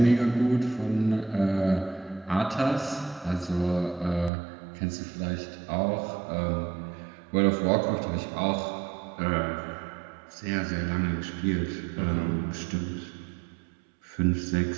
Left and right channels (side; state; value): left; drops out; at 4.3 s